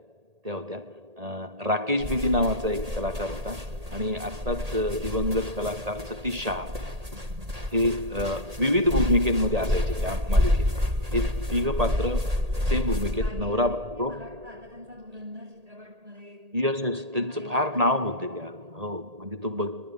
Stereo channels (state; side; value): late; left; 1.8 ms